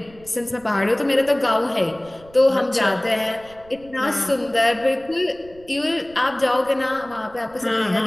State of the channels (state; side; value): noise; right; rumble, 25 dB below the sound